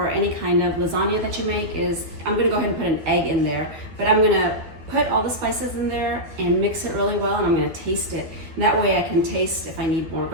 any kind of lasagna that you make is, I'm gonna go ahead and put an egg in there, but I'm gonna put all the spices in there and mix it really well, and I'm gonna taste it. And that way I can taste if I need more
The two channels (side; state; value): left; late; 12 ms